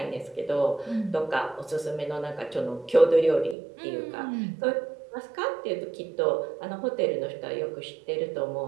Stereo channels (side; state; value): left; drops out; at 3.6 s